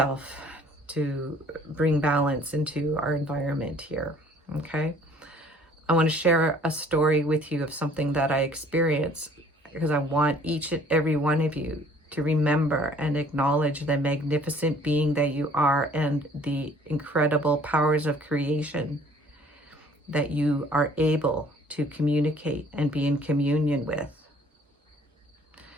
to bring balance into our environment here. Okay. I want to share a story with you of something that I experienced, because I want each and every one of you to remember and acknowledge the magnificent being that you are and the incredible powers of creation that you are able to communicate and be in communion with.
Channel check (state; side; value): normal; both; correlation 0.55